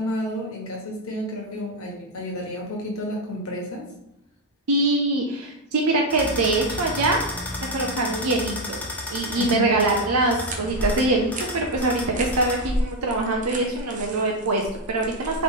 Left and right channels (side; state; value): both; normal; correlation 0.05